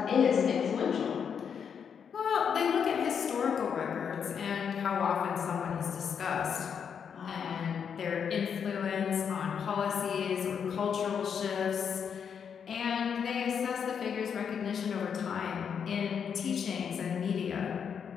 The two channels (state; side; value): quieter; right; 7.2 dB